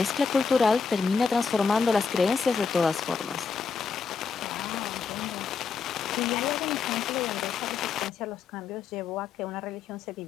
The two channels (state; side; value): quieter; right; 5.5 dB